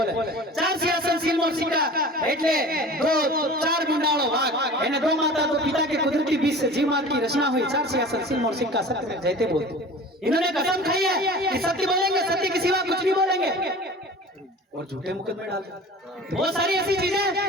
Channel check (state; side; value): normal; both; correlation 0.40